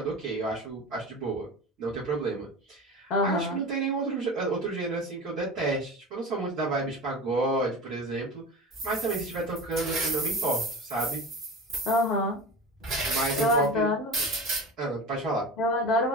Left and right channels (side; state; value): both; normal; correlation 0.31